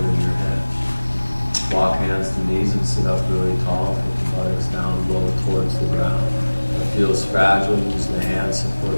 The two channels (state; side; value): inverted; both; correlation -1.00